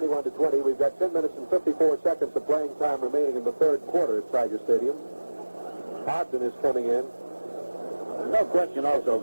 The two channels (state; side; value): inverted; both; correlation -1.00